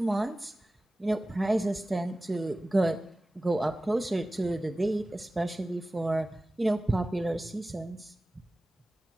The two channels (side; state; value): both; normal; correlation 0.97